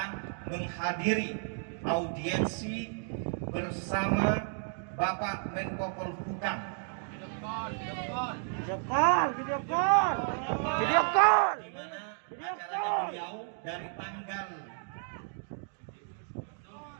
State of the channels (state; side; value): silent; left; 56 dB below the other